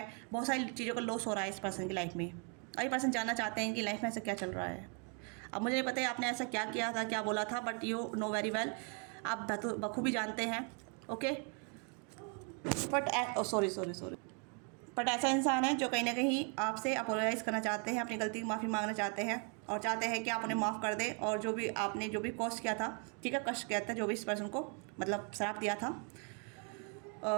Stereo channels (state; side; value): quieter; left; 38.2 dB